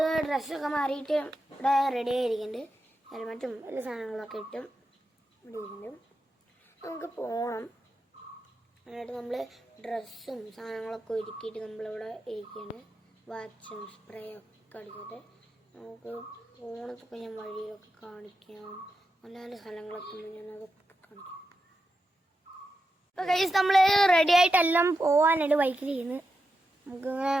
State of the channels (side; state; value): both; normal; correlation 0.88